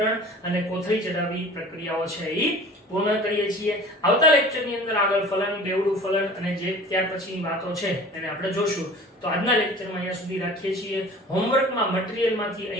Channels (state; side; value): normal; both; correlation 0.43